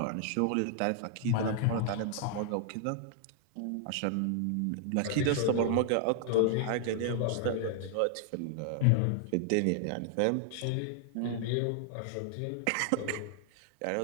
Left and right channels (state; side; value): different; both; correlation -0.01